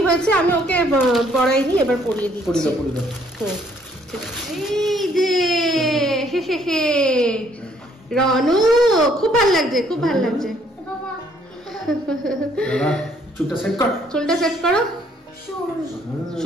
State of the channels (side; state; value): both; normal; correlation 0.65